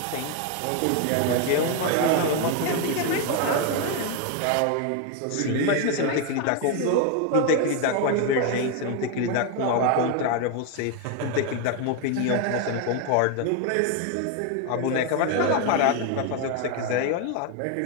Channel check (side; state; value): both; different; correlation 0.01